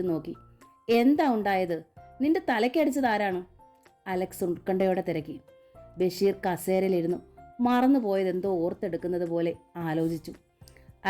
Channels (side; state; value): both; identical; correlation 1.00